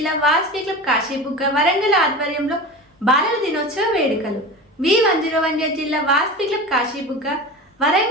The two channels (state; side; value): normal; both; correlation 0.31